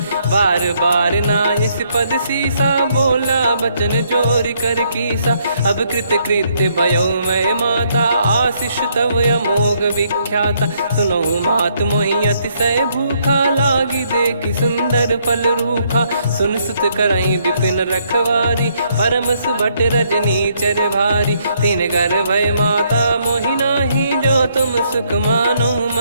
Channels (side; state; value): both; inverted; correlation -0.71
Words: बार बार नायस पद सीसा, बोला बचन चोरी कर कीसा। अब कृत कृत्य भयउ मैं माता, आशीष तव अमोघ विख्याता। सुनहु मात मोहि अतिशय भूखा, लागी देखि सुंदर फल रूखा। सुन सुत करहि विपिन रखवारी, परम सुभट रजनी चर भारी। तीन घर भय माता मोहि नाही, जो तुम सुख मानो